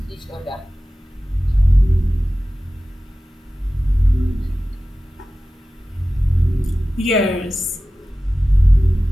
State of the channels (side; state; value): both; normal; correlation 0.95